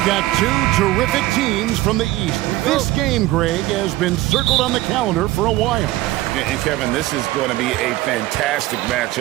got two terrific teams from the East. This game, Greg, has been circled on the calendar for a while. And Kevin, this is going to be a fantastic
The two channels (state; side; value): quieter; left; 16.8 dB